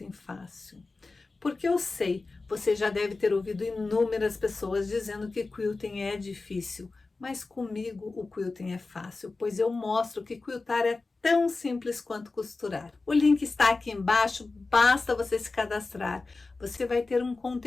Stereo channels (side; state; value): right; quieter; 3.7 dB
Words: Fácil. Porque eu sei, você já deve ter ouvido inúmeras pessoas dizendo que quilting é difícil, mas comigo o quilting é fácil, pois eu mostro que quiltar é tão simples quanto costurar. O link está aqui embaixo, basta você se cadastrar. Você vai ter um